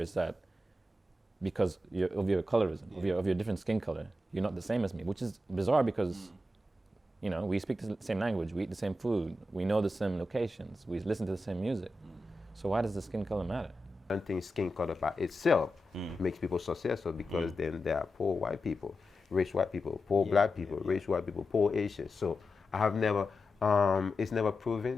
that because of your colorism, of your different skin color, you're not the same as me, which is bizarre because you know, we speak the same language, we eat the same food, we know the same locations, we listen to the same music. So why does the skin color matter? I don't think skin color by itself makes people successful, because then there are poor white people, rich white people, poor black people, rich white people, poor Asians. So I have never, it's never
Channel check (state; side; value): normal; both; correlation 0.90